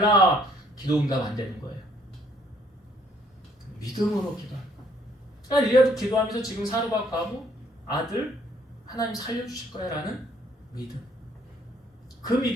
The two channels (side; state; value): both; normal; correlation 0.64